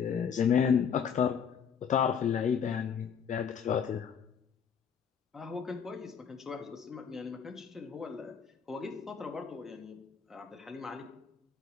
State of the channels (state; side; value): quieter; right; 7.2 dB